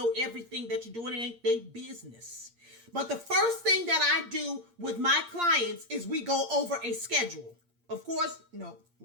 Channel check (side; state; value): left; late; 8.6 ms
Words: everything that you're doing. It ain't their business. But the first thing that I do with my clients is we go over a schedule. Of course, no,